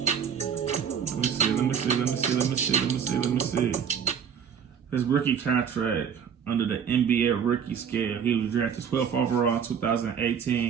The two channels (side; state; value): left; quieter; 7.6 dB